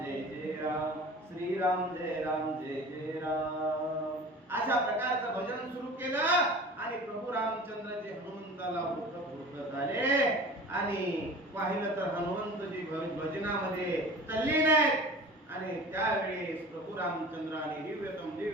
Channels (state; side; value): normal; both; correlation 0.40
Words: जय जय राम, श्रीराम जय राम जय जय राम, अशा प्रकारचं भजन सुरू केलं. आणि प्रभू रामचंद्र जे हनुमंताला बोलत झाले आणि पाहिलं तर हनुमंतजी भजनामध्ये तल्लीन आहेत. आणि त्यावेळेस प्रभू रामचंद्राने